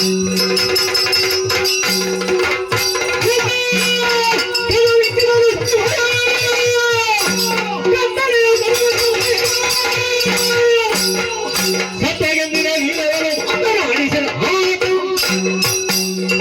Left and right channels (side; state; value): both; identical; correlation 1.00